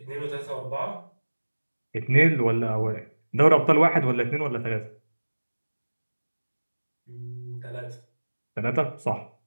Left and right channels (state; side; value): inverted; both; correlation -1.00